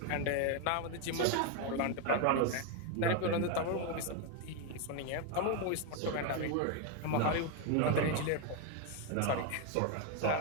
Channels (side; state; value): both; different; correlation 0.01